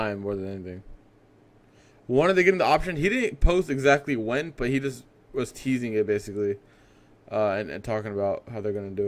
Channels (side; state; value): both; identical; correlation 1.00